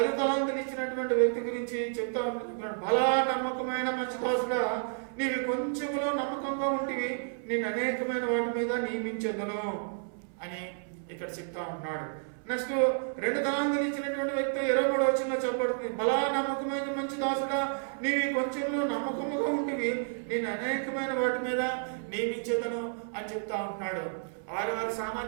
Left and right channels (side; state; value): left; silent; 57 dB below the other